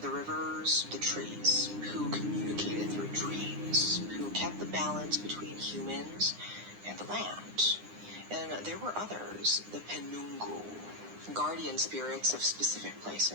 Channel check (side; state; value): left; late; 9.8 ms